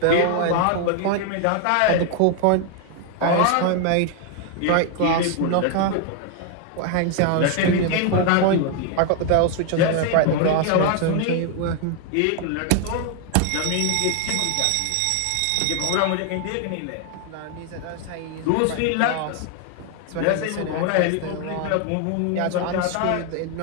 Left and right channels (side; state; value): both; different; correlation 0.00